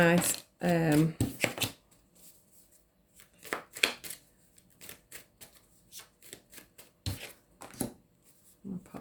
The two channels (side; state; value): both; identical; correlation 1.00